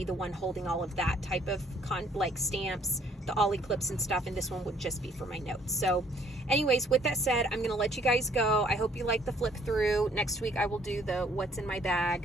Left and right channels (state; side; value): normal; both; correlation 0.62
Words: the one holding all of that type of like stamps, the Ollie clips and stuff, and this one would just be for my notes. So anyways, with that said, I'm gonna let you guys go. I hope you like the flip through. Next week I will do the what's in my